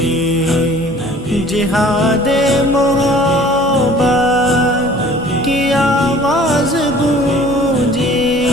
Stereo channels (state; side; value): normal; both; correlation 0.49